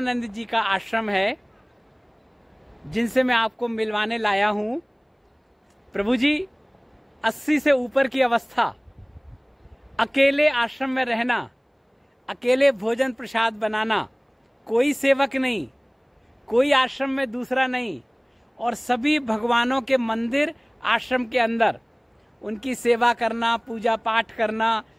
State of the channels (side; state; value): both; identical; correlation 1.00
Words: जी का आश्रम है जिनसे मैं आपको मिलवाने लाया हूं। प्रभु जी 80 से ऊपर की अवस्था, अकेले आश्रम में रहना, अकेले भोजन प्रसाद बनाना, कोई सेवक नहीं, कोई आश्रम में दूसरा नहीं, और सभी भगवानों के मंदिर आश्रम के अंदर, उनकी सेवा करना, पूजा पाठ करना,